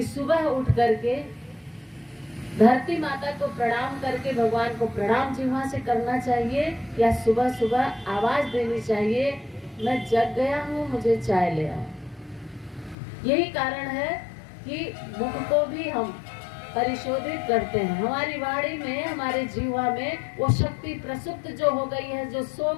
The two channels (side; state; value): right; drops out; at 13.0 s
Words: सुबह उठ करके धरती माता को प्रणाम करके भगवान को प्रणाम जीवा से करना चाहिए, या सुबह सुबह आवाज देनी चाहिए, मैं जग गया हूँ, मुझे चाय ले आओ। यही कारण है कि मुख को भी हम परिशोधित करते हैं। हमारी वाणी में, हमारे जीवा में वो शक्ति प्रसुप्त जो हो गई है, जो सो